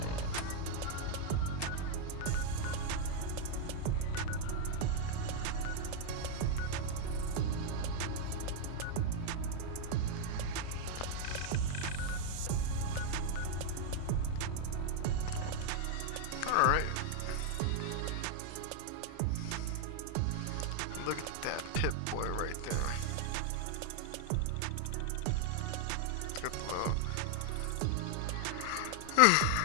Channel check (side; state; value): both; different; correlation 0.00